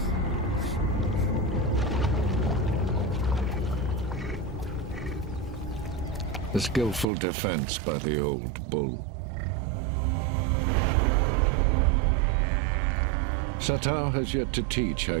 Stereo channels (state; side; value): drops out; left; at 7.1 s